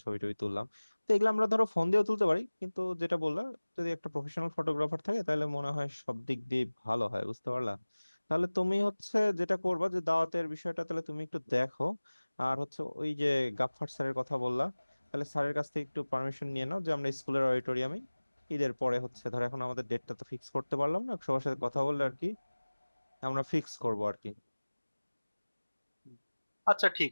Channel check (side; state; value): both; inverted; correlation -1.00